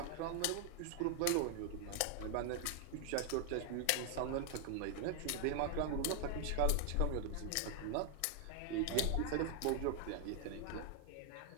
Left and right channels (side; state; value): both; different; correlation 0.00